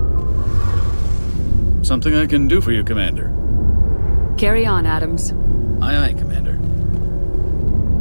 Something I can do for you, Commander. Carry on, Adams. Aye, aye, Commander.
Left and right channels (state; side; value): inverted; both; correlation -1.00